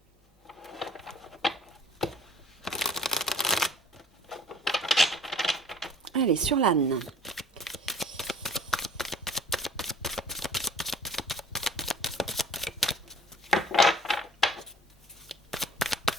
Allez, sur l'âne.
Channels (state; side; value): normal; both; correlation 0.50